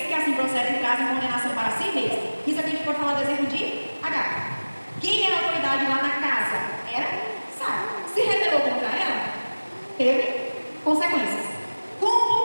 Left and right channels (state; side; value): inverted; both; correlation -1.00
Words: que assim procedem trazem condenação para si mesmos. Isso aqui a gente pode falar do exemplo de Agar. Quem era a autoridade lá na casa? Era Sara. Se rebelou contra ela, teve consequências.